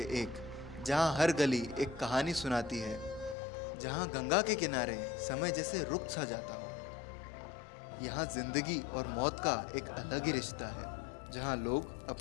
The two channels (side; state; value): right; drops out; at 3.4 s